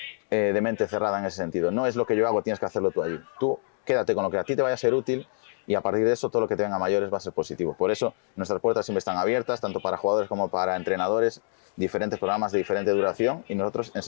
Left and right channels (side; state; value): right; silent; 61 dB below the other